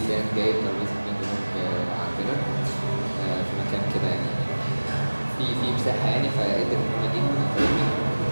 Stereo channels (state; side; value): inverted; both; correlation -1.00